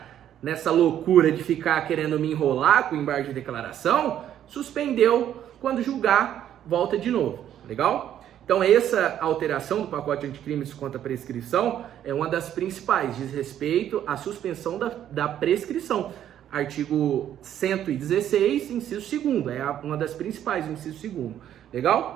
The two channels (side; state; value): left; quieter; 10.7 dB